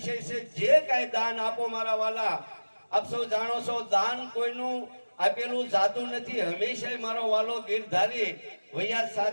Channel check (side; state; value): both; inverted; correlation -1.00